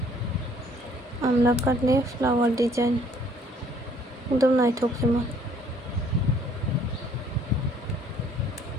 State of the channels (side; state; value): both; normal; correlation 0.61